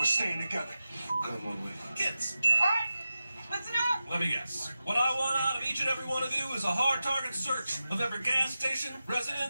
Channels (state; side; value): inverted; both; correlation -0.93